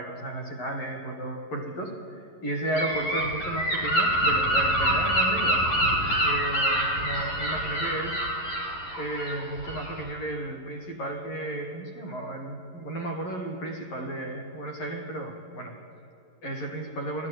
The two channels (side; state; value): right; late; 11 ms